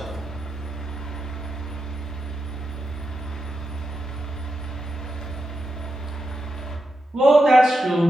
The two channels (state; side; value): normal; both; correlation 0.87